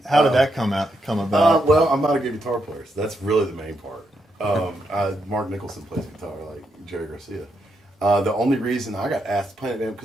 How did that come about? Well, I'm not a good guitar player, so that's really the main part. Mark Nicholson plays guitar like Jerry Garcia. The only reason I got asked to play in a band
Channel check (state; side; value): normal; both; correlation 0.81